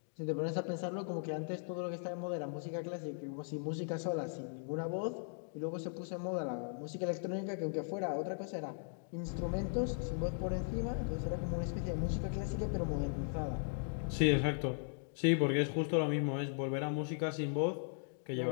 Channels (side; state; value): right; silent; digital silence